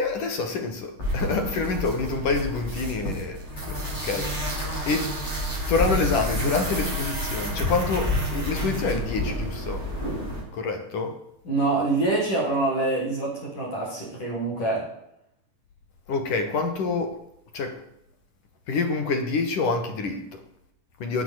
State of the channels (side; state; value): right; late; 10 ms